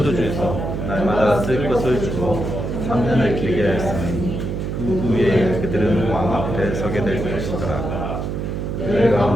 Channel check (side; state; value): right; noise; hum, 3 dB below the sound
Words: 날마다 쓸 것을 주고 3년을 길게 하였으니 그 후에 그들은 왕 앞에 서게 될 것이더라. 그들